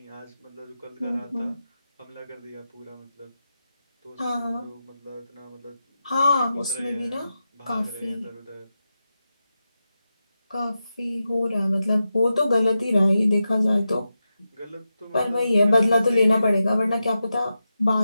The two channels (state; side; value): inverted; both; correlation -0.90